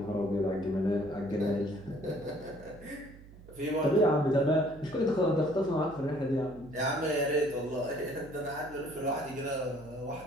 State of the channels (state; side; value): noise; right; hum, 19 dB below the sound